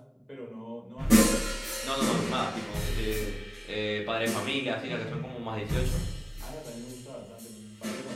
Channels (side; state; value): both; identical; correlation 1.00